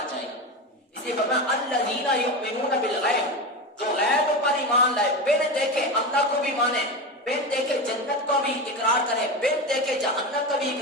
جائے گا. اس لیے فرمایا الذین یؤمنون بالغیب, جو غیب پر ایمان لائے, بن دیکھے اللہ کو بھی مانے, بن دیکھے جنت کو بھی اقرار کرے, بن دیکھے جہنم کا بھی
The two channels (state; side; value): normal; both; correlation 0.21